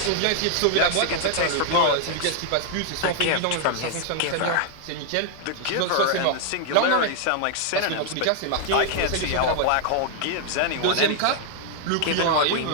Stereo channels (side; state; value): both; different; correlation 0.00